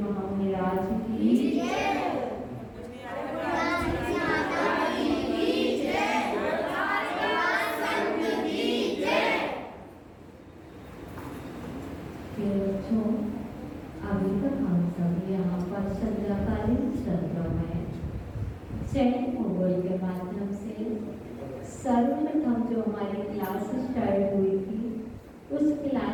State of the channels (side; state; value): both; identical; correlation 1.00